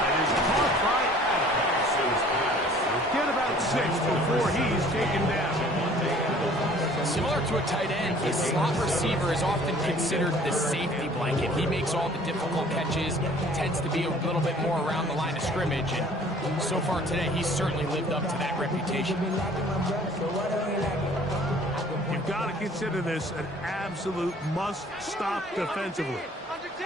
is caught by Adams. He'll get about 6 before he's taken down. Similar to a tight end, a slot receiver is often considered the safety blanket. He makes all the difficult catches, tends to be a little bit more around the line of scrimmage, and so far today, he's certainly lived up to that reputation. You've got to consider this an absolute must-stop defensively.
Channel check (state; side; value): normal; both; correlation 0.53